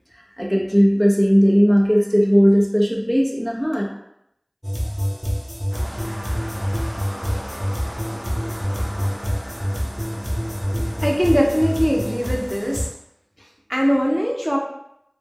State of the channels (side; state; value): both; identical; correlation 1.00